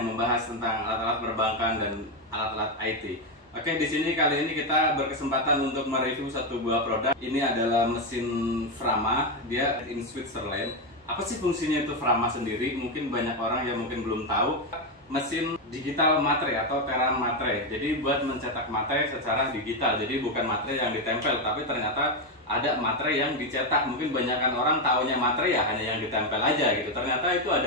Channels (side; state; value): both; normal; correlation 0.07